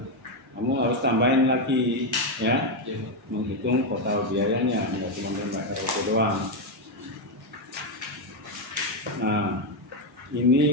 kamu harus tambahin lagi ya, Iya, Pak. menghitung total biayanya, nggak cuma nambah RUP doang. Nah,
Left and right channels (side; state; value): both; normal; correlation 0.05